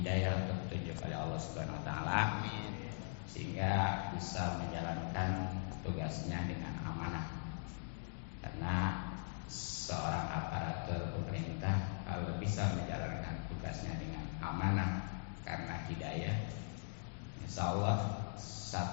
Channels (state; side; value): silent; right; digital silence